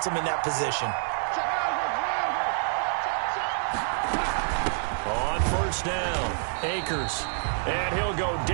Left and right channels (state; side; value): silent; left; 60 dB below the other